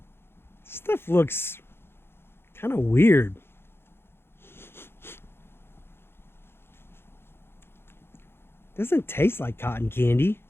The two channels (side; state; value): right; late; 0.11 ms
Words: Stuff looks kind of weird. Doesn't taste like cotton candy.